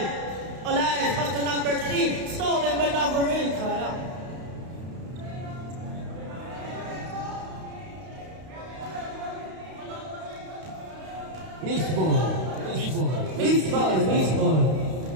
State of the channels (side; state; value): left; late; 32 ms